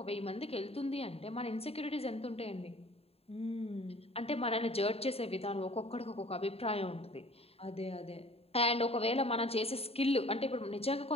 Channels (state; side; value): late; right; 0.29 ms